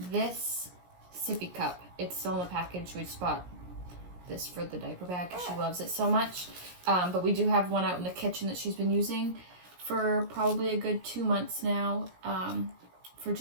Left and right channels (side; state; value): left; late; 17 ms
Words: this sippy cup, it's still in the package. We just bought this for the diaper bag because she loves it so much. But we do have one out in the kitchen that she's been using for probably a good 2 months now, for